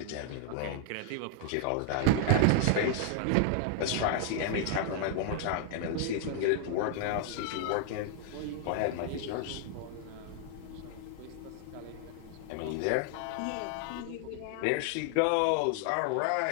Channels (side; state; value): both; different; correlation 0.00